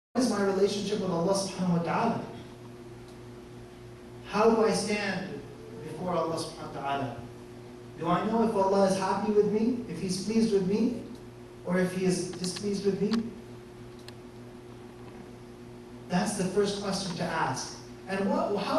is my relationship with Allah subhanahu wa ta'ala? How do I stand before Allah subhanahu wa ta'ala? Do I know if Allah is happy with me, if He's pleased with me, or if He is displeased with me? That's the first question to ask. And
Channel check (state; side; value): identical; both; correlation 1.00